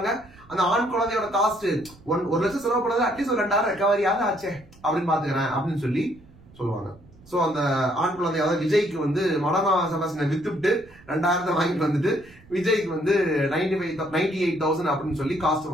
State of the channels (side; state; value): right; noise; rumble, 24 dB below the sound